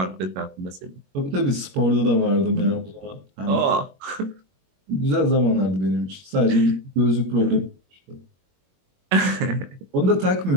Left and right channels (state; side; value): late; left; 21 ms